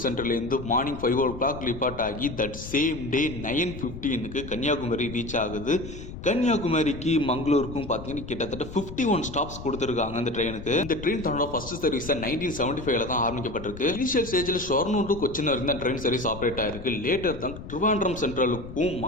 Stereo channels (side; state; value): left; noise; rumble, 12 dB below the sound